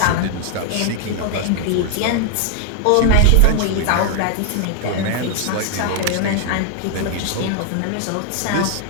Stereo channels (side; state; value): both; different; correlation 0.00